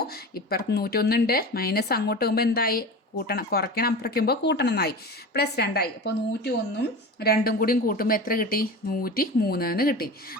ഇപ്പുറത്ത് 101 ഉണ്ട്. മൈനസ് അങ്ങോട്ട് പോകുമ്പോൾ എന്തായി? കൂട്ടണം. കുറയ്ക്കണം. അപ്പുറയ്ക്കുമ്പോൾ കൂട്ടണം എന്നായി. +2 ആയി. അപ്പോൾ 101ഉം 2ഉം കൂടിയും കൂട്ടുമ്പോൾ എത്ര കിട്ടി? 103 എന്ന് കിട്ടി.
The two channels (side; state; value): both; normal; correlation 0.31